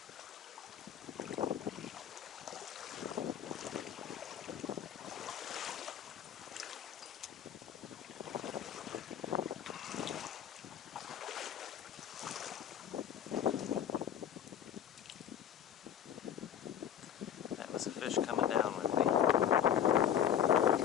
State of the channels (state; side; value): quieter; right; 9.5 dB